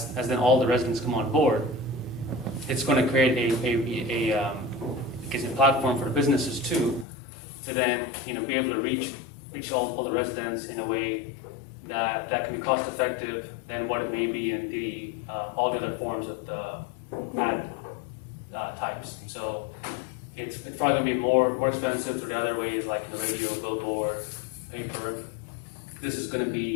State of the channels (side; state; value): right; drops out; at 7.1 s